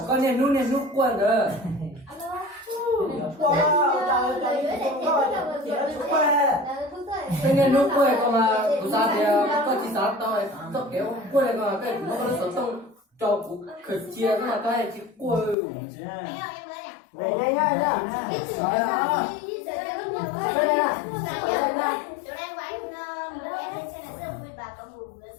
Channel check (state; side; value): drops out; right; at 15.6 s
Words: con nên nút quên rồi cái nút quên còn mà tụi ta thì có chỉ sao tao kéo quên còn cái nó có sống trong cho cũng khởi chia cái mà cái chỉ quên Về nhanh nhanh nhá.